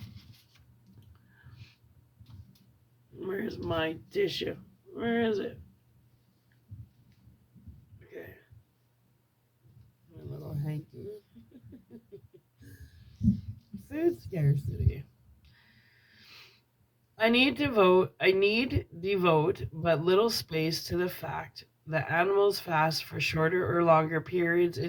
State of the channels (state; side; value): identical; both; correlation 1.00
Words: Where's my tissue? Where is it? Okay, my little hanky. Food scarcity. I need devote but little space to the fact that animals fast for shorter or longer periods